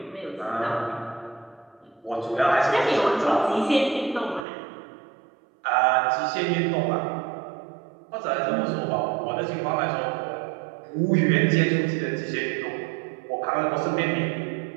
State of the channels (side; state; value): left; drops out; at 4.5 s